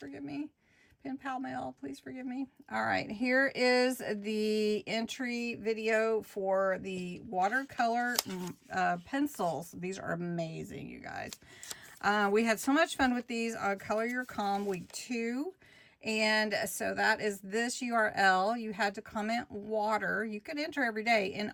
me. Pen Pal Mail, please forgive me. All right, here is the entry video for the watercolor pencils. These are amazing, you guys. We had so much fun with these on Color Your Calm week 2. And so that is this URL. You had to comment water. You could enter every day. In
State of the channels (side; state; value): both; identical; correlation 1.00